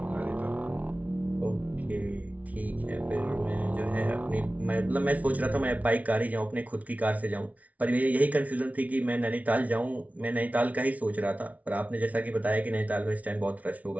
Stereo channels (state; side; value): late; left; 0.070 ms